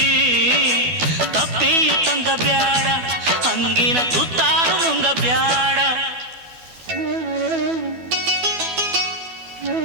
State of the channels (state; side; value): late; left; 12 ms